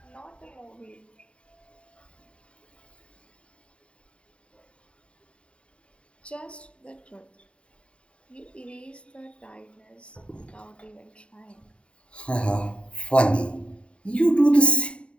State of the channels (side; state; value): right; late; 0.058 ms